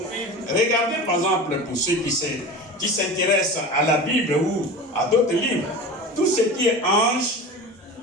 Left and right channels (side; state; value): both; normal; correlation 0.32